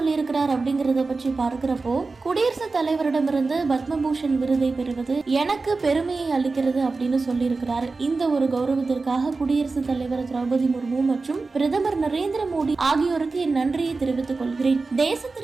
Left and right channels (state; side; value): quieter; left; 3.9 dB